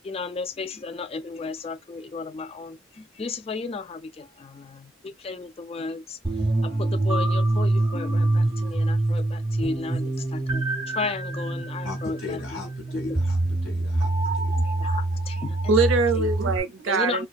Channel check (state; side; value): normal; both; correlation 0.70